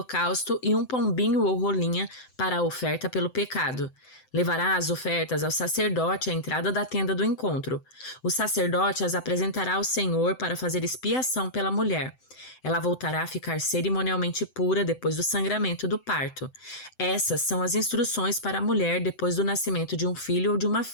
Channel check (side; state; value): right; late; 7.8 ms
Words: e um pombinho ou rolinha para a oferta pelo pecado. Levará as ofertas ao sacerdote à entrada da tenda do encontro. O sacerdote as apresentará ao Senhor para fazer expiação pela mulher. Ela voltará a ficar cerimonialmente pura depois do sangramento do parto. Essas são as instruções para a mulher depois do nascimento de um filho ou de uma